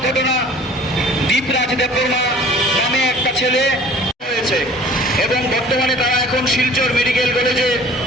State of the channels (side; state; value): both; normal; correlation 0.48